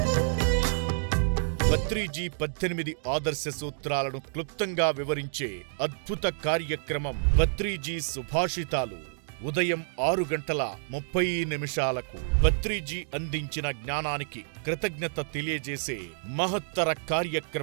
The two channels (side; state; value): left; silent; digital silence